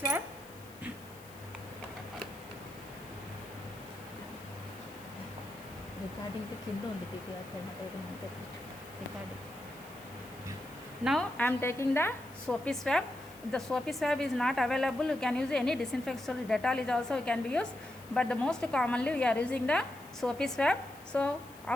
Recording to కింద ఉంది TPR recording. Now I am taking the soapy swab. If the soapy swab is not available, you can use any disinfectant. Dettol is also can be used, but the most commonly we are using the soapy swab. So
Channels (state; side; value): noise; left; hiss, 22 dB below the sound